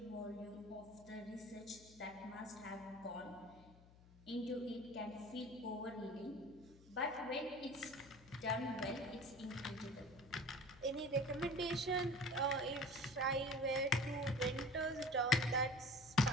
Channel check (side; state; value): left; noise; hum, 22 dB below the sound